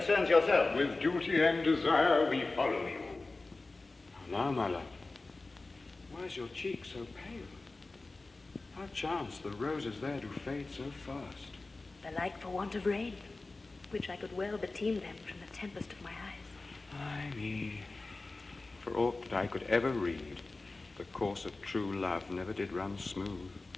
yourself. With duty and desire we follow you. Now, my love, why is your cheek so pale? How chance the roses there do fade so fast? Belike for want of rain, which I could well beteem them from the tempest of my eyes. Ay me, for aught that I could ever read, the course of true love never did run smooth.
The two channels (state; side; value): quieter; right; 3.4 dB